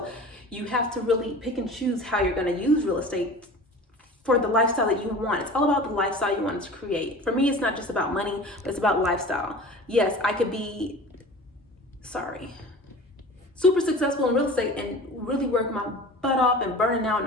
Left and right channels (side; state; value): both; normal; correlation 0.38